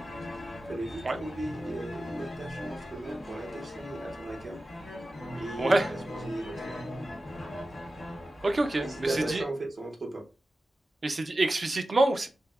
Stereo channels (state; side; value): normal; both; correlation 0.94